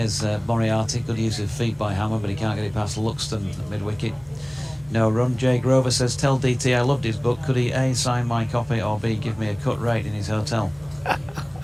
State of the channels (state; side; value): noise; right; hum, 30 dB below the sound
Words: Moriarty, good use of feet by Hammond, but he can't get it past Luxton at mid-wicket. No run. Jay Grover says, tell DT I loved his book. Could he A, sign my copy, or B, give me a cut rate in his hotel?